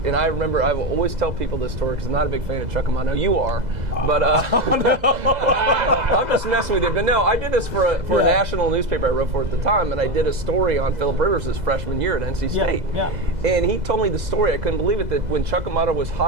and I remember I will always tell people this story because I'm not a big fan of Chuck Amato. You are, but I'm just messing with you. But no, I did this for a national newspaper I wrote for at the time, and I did a story on Philip Rivers' freshman year at NC State. Yeah. And he told me the story. I couldn't believe it, that when Chuck Amato was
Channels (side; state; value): left; late; 2.0 ms